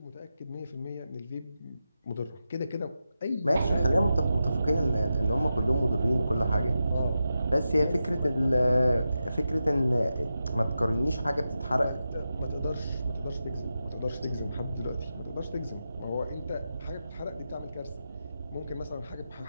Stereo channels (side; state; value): both; inverted; correlation -0.90